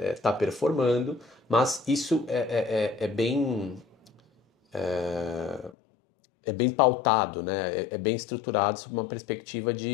está performando, mas isso é bem pautado, né? É bem estruturado sob uma perspectiva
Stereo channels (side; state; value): right; drops out; at 5.7 s